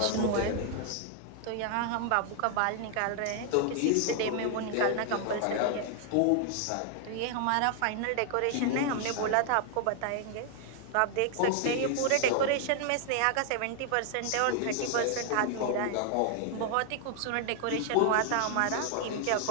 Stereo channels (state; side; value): different; both; correlation 0.00